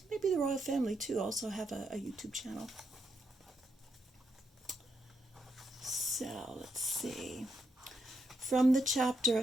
maybe the royal family too, also have a YouTube channel. So let's see. From the chapter A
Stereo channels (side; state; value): both; normal; correlation 0.79